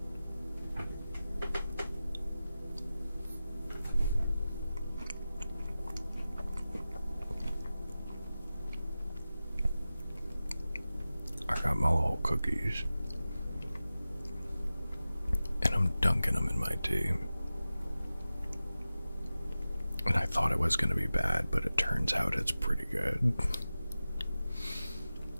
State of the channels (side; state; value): both; inverted; correlation -0.95